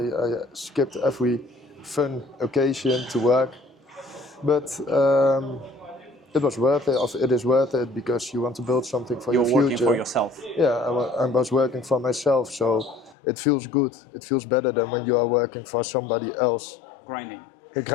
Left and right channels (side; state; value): right; drops out; at 13.2 s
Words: skipped every fun occasion to work. But it was worth it. It is worth it because you want to build something for your future. You're working for yourself. Yeah, I was working for myself, so it feels good. It feels better than when you are working for somebody else. Grinding.